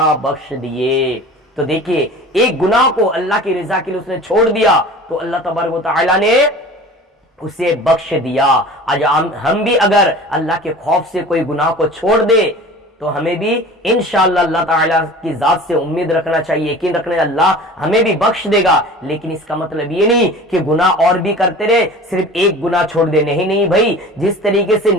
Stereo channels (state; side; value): normal; both; correlation 0.40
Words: بخش دیے۔ تو دیکھیے ایک گناہ کو اللہ کی رضا کے لیے اس نے چھوڑ دیا تو اللہ تبارک و تعالیٰ نے اسے بخش دیا۔ آج ہم بھی اگر اللہ کے خوف سے کوئی گناہ کو چھوڑ دے تو ہمیں بھی انشاءاللہ اللہ تعالیٰ کی ذات سے امید رکھنا چاہیے، یقین رکھنا ہے اللہ ہمیں بھی بخش دے گا۔ لیکن اس کا مطلب یہ نہیں کہ گناہ اور بھی کرتے رہے، صرف ایک گناہ چھوڑ دے، نہیں بھائی، جس طریقے سے